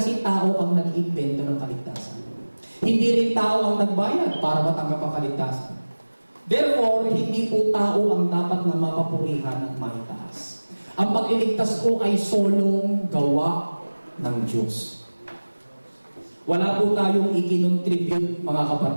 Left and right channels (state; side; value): inverted; both; correlation -1.00